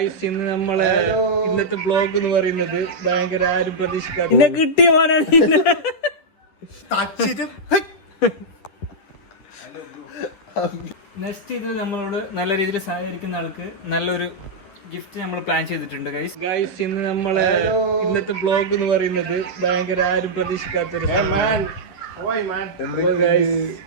ഇന്ന് നമ്മളെ ഇന്നത്തെ ബ്ലോഗ് എന്ന് പറയുന്നത് ഭയങ്കര ആരും പ്രതീക്ഷിക്കാത്ത കിട്ടിയ മോനാണ്. നെക്സ്റ്റ് ഇതിൽ നമ്മളോട് നല്ല രീതിയിൽ സഹകരിക്കുന്ന ആൾക്ക് നല്ലൊരു ഗിഫ്റ്റ് നമ്മൾ പ്ലാൻ ചെയ്തിട്ടുണ്ട് ഗൈസ്. ഇന്ന് നമ്മളെ ഇന്നത്തെ ബ്ലോഗ് എന്ന് പറയുന്നത് ഭയങ്കര ആരും പ്രതീക്ഷിക്കാത്തൊരു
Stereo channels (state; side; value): late; right; 10 ms